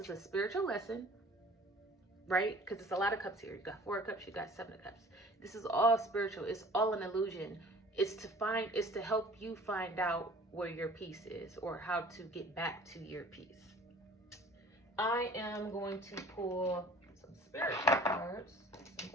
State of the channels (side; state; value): both; normal; correlation 0.48